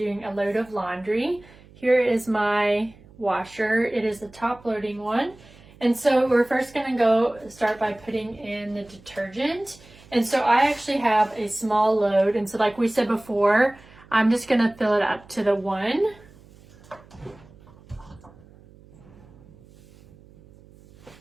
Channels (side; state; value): right; noise; hum, 24 dB below the sound